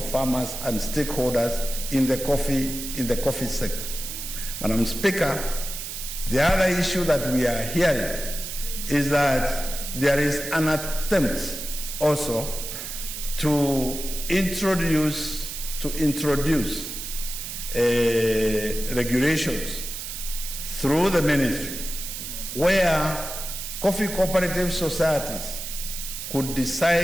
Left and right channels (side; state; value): right; noise; hiss, 7 dB below the sound